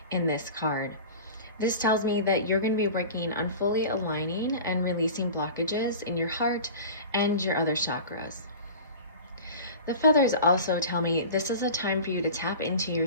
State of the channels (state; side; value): inverted; both; correlation -0.36